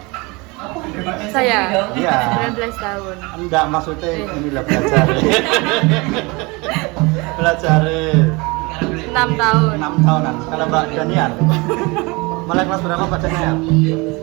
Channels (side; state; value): left; quieter; 26.0 dB